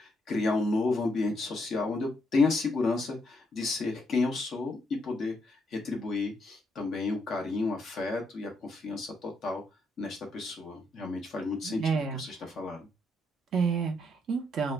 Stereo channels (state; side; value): normal; both; correlation 0.76